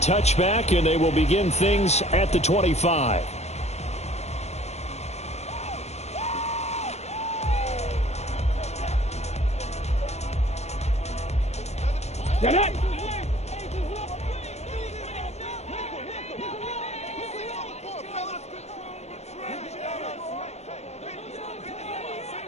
touchback, and they will begin things at the 25. Get it!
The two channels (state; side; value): late; right; 0.32 ms